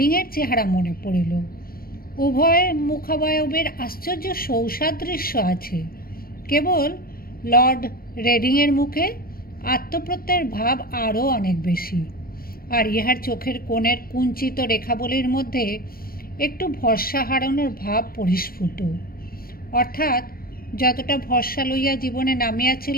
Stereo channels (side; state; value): right; late; 0.43 ms